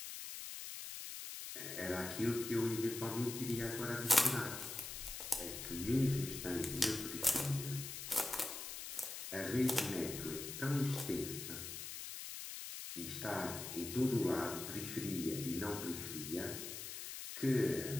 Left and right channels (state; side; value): noise; left; hiss, 7 dB below the sound